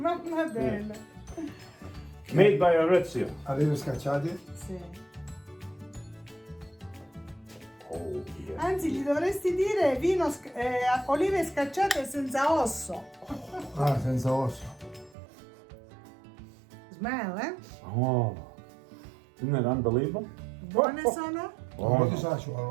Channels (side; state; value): left; drops out; at 15.2 s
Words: Adele. Made by Maurizio. Olive scacciati. Sì. Oh, yeah. Anzi, gli dovresti dire olive scacciate senza osso. Ah, senza osso. Smell, eh? Oh, isn't that unbelievable? Buone sono? Un po' di sale ci